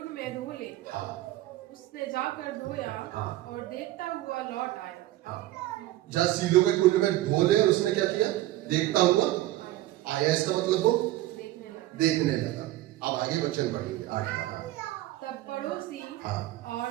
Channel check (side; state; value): left; quieter; 15.8 dB